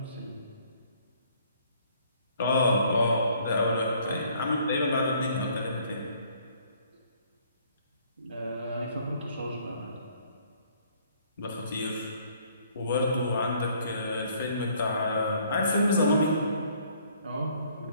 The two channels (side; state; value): both; inverted; correlation -0.61